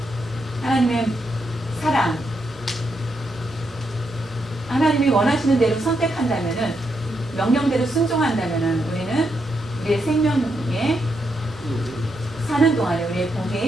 하나님의 사랑, 하나님이 원하시는 대로 선택한다면 명령대로 순종한다면 우리는 우리의 생명에 사는 동안에 우리의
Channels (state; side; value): normal; both; correlation 0.81